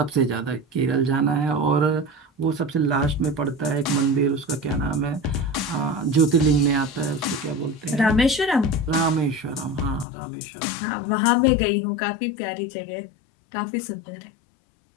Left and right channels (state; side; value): drops out; right; at 10.1 s